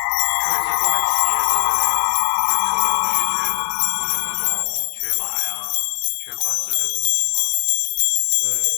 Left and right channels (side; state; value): right; silent; 66 dB below the other